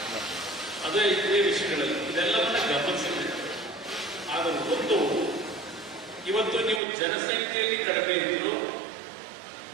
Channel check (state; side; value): drops out; left; at 6.8 s